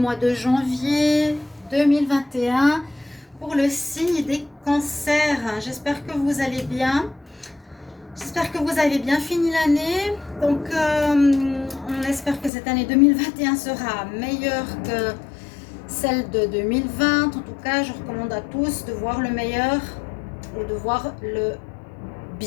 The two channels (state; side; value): drops out; right; at 12.5 s